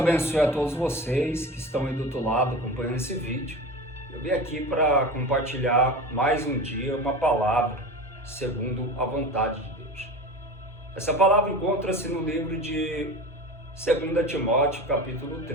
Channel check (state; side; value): normal; both; correlation 0.31